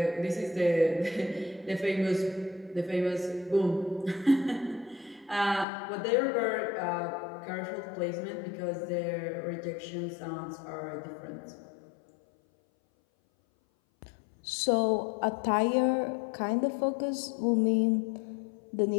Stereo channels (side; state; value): right; drops out; at 5.7 s